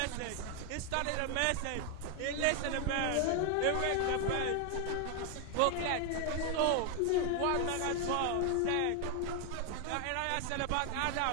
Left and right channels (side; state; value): both; different; correlation 0.00